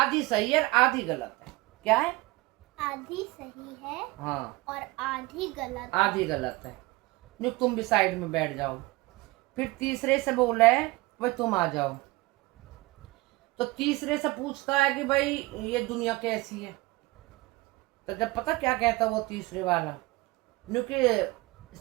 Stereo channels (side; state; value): left; quieter; 21.9 dB